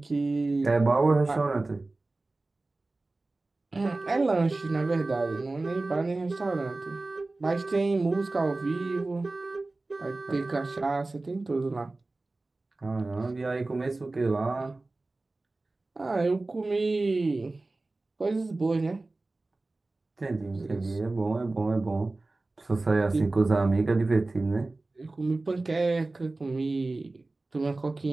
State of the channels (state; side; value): quieter; left; 3.2 dB